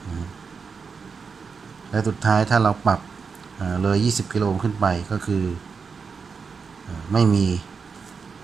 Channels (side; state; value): left; quieter; 5.5 dB